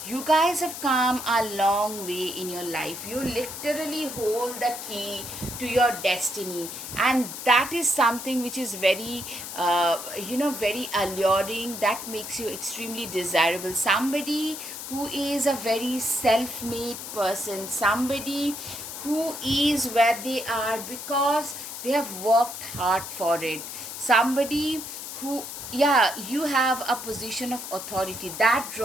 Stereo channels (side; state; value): left; noise; hiss, 9 dB below the sound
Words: you guys have come a long way in your life. You literally hold the key to your destiny, and that is something which is very very alluring. That makes you extremely desirable. Somebody who is a very self-made person, somebody who is where they are because they have worked hard for it. Somebody who, yeah, you have a position of authority that